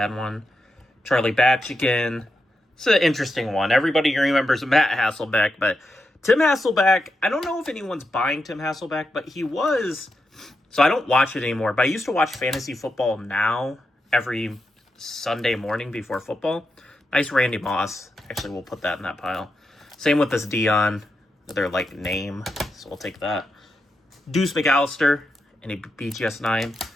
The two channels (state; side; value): normal; both; correlation 0.86